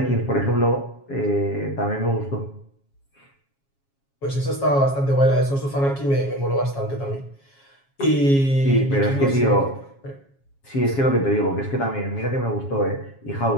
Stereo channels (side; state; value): right; late; 7.3 ms